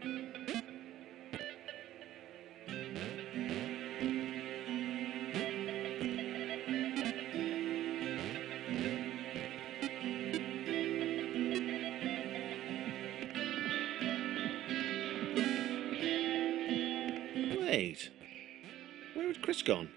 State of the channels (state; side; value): quieter; left; 13.6 dB